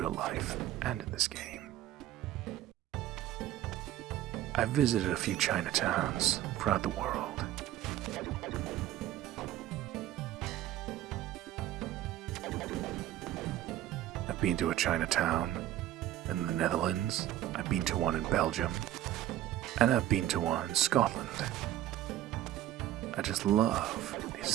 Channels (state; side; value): quieter; left; 13.3 dB